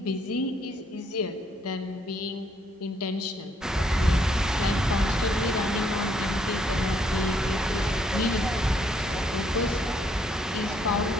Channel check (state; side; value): normal; both; correlation 0.70